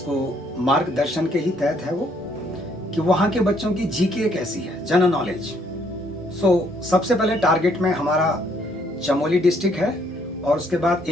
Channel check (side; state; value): both; normal; correlation 0.67